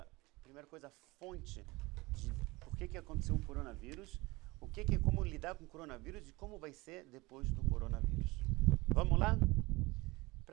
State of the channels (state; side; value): quieter; left; 22.6 dB